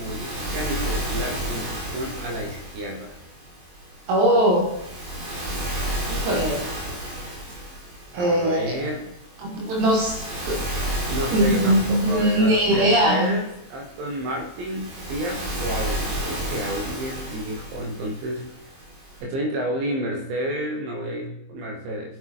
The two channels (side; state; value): left; late; 23 ms